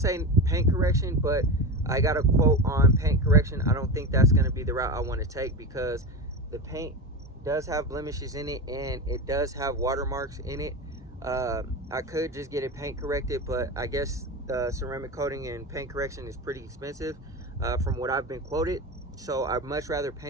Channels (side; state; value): both; normal; correlation 0.23